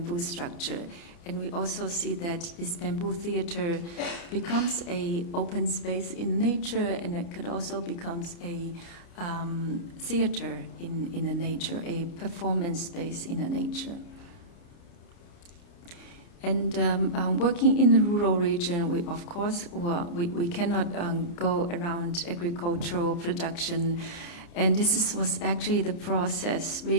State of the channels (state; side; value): late; right; 29 ms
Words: structure. And we also see that this bamboo theater becomes a open space in nature, and it could also becomes a theater in the nature, a performance space in the nature. And working in the rural region, we of course we cannot go around agricultural production, and this was actually the process.